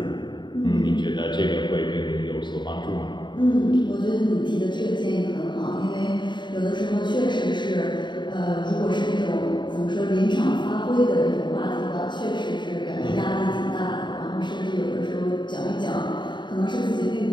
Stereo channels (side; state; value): right; late; 0.22 ms